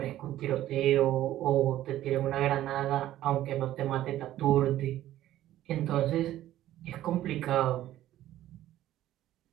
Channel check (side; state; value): left; quieter; 13.6 dB